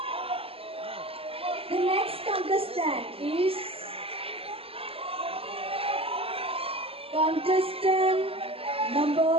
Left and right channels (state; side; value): late; left; 0.28 ms